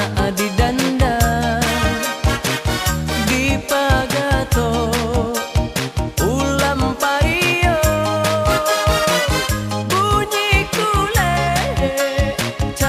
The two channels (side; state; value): both; identical; correlation 1.00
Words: di danda di Pagato ulam pario bunyi kule